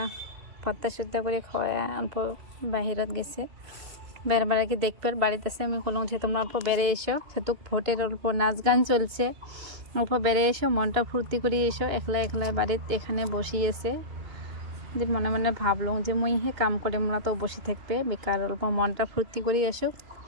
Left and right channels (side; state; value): left; late; 2.8 ms